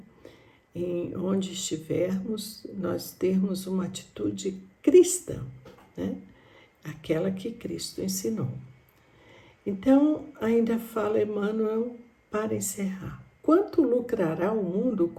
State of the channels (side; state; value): both; identical; correlation 1.00